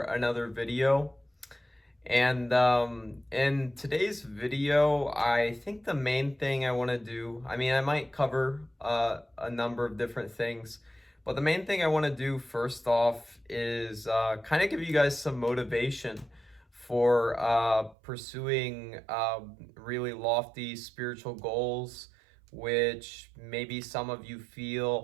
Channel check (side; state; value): left; drops out; at 17.9 s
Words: another video. And in today's video, I think the main thing I want to do, I might cover a number of different things, but the main thing I want to do first off is kind of give you guys some motivation for pursuing really lofty spiritual goals, which maybe some of you